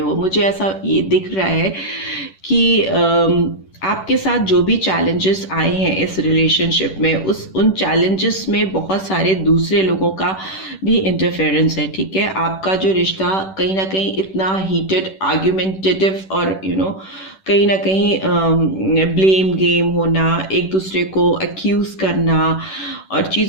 मुझे ऐसा ये दिख रहा है कि आपके साथ जो भी चैलेंजेस आए हैं इस रिलेशनशिप में, उन चैलेंजेस में बहुत सारे दूसरे लोगों का भी इंटरफेरेंस है। ठीक है, आपका जो रिश्ता कहीं ना कहीं इतना हीटेड, आर्ग्यूमेंटेटिव और कहीं ना कहीं ब्लेम गेम होना, एक दूसरे को एक्यूज करना और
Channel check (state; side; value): late; right; 10 ms